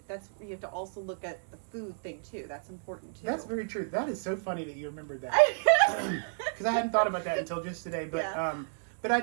you have to also look at the food thing too. That's important too. That's very true. That is so funny that you remembered that. Because I hadn't thought about that until just today. But but I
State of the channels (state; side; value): silent; left; digital silence